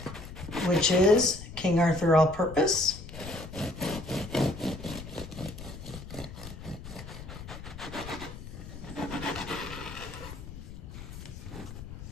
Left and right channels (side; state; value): left; noise; rumble, 12 dB below the sound